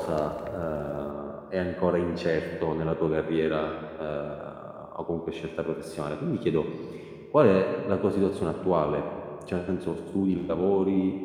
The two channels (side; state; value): both; identical; correlation 1.00